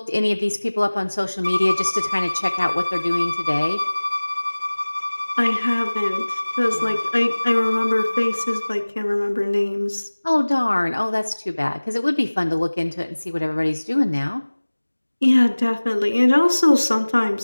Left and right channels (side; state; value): both; inverted; correlation -1.00